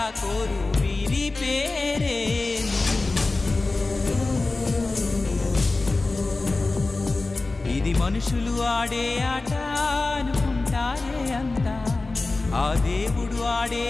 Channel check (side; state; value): right; quieter; 3.4 dB